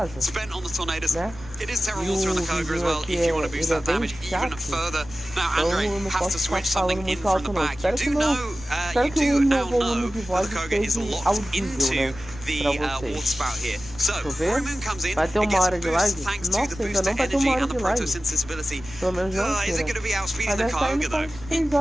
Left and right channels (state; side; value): noise; right; rumble, 17 dB below the sound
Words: spent on the Tornadoes. It is Terra Water on the Koga as well, if you want to boost that damage even further. Now, Andre has to switch something in from the back. You do now know that the Koga is locked into the water spout here. So, Roaring Moon comes in, vai ter uma hora de live? thanks to the Nossa, ainda booster não vai ter energy uma hora and the de live. photosynthesis ability. Pelo menos não Is it going to be outspeeding the deve estar Kyogre indo though? com 3